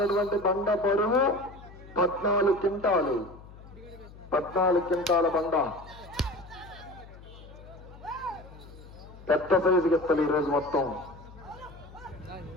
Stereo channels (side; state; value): left; noise; hum, 18 dB below the sound